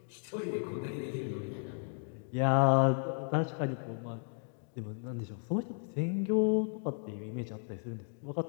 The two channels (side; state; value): right; silent; 55 dB below the other